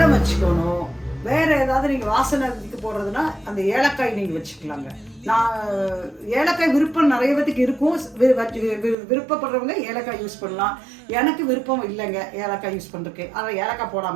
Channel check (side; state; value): left; drops out; at 9.0 s